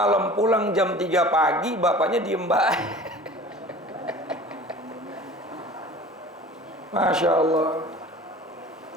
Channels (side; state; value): both; normal; correlation 0.42